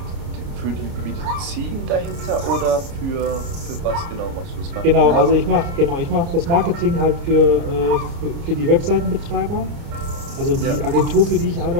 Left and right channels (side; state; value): left; late; 29 ms